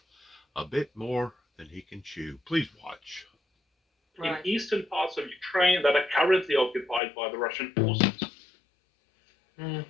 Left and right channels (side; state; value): right; drops out; at 7.0 s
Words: a bit more than he can chew. Please watch. In eastern parts of Ukraine that are currently occupied by the Russian forces.